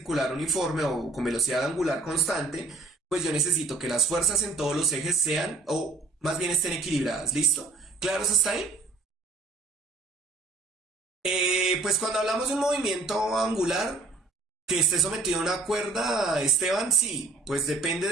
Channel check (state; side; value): quieter; left; 3.4 dB